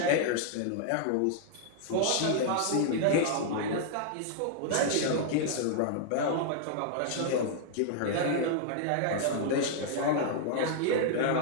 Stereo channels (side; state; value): both; different; correlation -0.01